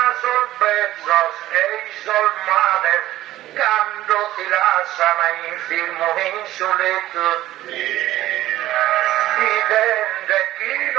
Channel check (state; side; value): quieter; left; 14.8 dB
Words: sorbezos e isolmades, quando ti lasciano infirmo insoleto. Dipende chi